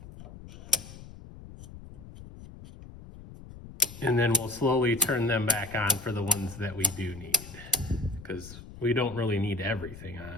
And then we'll slowly turn them back on for the ones that we do need, because we don't really need everything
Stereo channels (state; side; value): noise; left; rumble, 15 dB below the sound